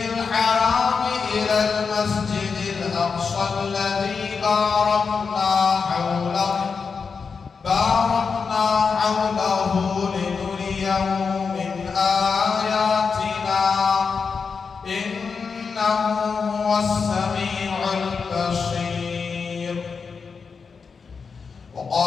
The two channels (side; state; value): right; quieter; 5.4 dB